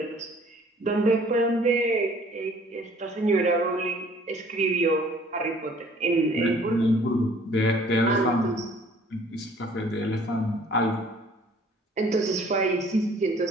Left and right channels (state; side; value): normal; both; correlation 0.55